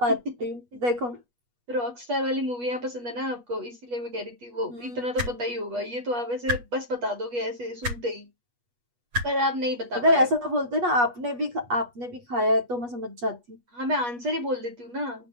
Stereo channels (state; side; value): late; left; 8.3 ms